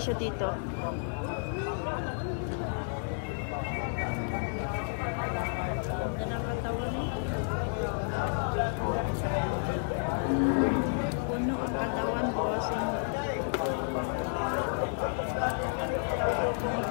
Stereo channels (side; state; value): right; silent; digital silence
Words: dito. Ganda ng katawan, eh. Puno ang katawan, bossing. Ang